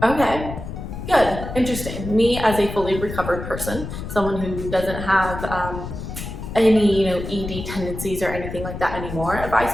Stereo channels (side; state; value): left; noise; rumble, 8 dB below the sound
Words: okay, good, interesting. Me as a fully recovered person, someone who doesn't have any ED tendencies or anything like that anymore, if I